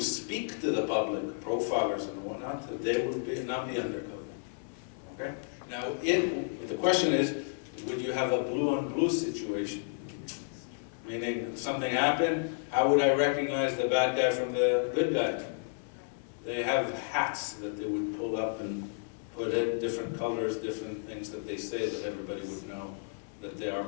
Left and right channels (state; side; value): silent; right; digital silence